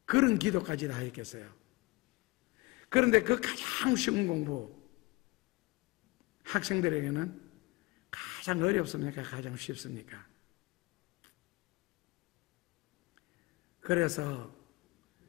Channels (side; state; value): right; quieter; 23.6 dB